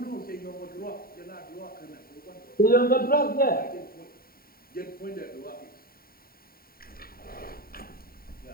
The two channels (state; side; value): late; right; 0.43 ms